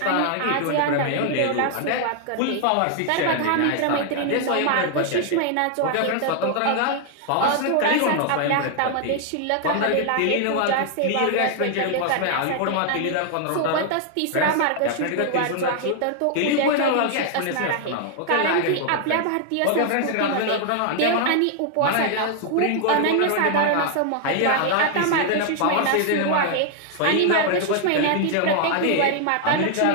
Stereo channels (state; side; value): different; both; correlation 0.00